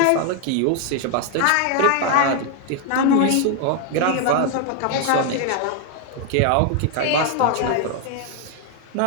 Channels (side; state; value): both; different; correlation 0.00